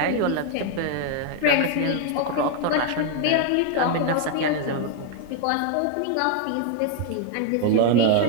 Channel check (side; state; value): both; different; correlation 0.00